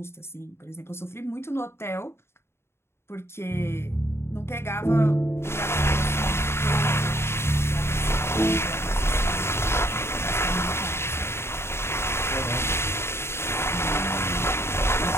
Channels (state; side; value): late; right; 0.12 ms